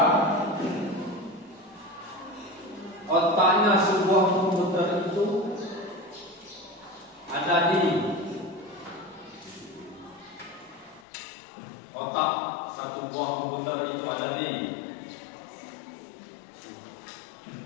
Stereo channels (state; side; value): drops out; right; at 11.1 s